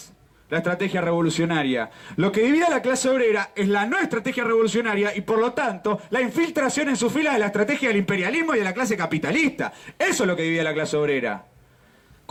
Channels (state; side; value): identical; both; correlation 1.00